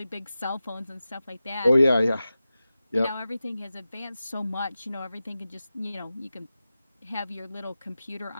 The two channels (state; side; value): inverted; both; correlation -0.94